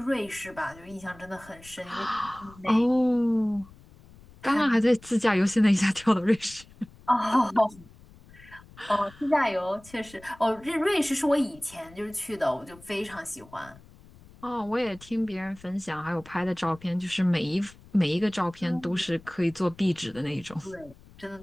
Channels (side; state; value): left; noise; rumble, 23 dB below the sound